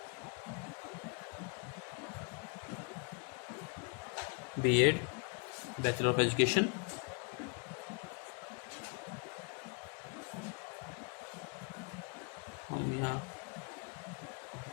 B.Ed bachelor of education. हम यहाँ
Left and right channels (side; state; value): right; quieter; 35.3 dB